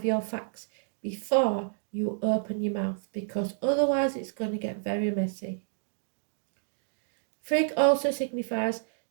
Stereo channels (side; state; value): left; silent; digital silence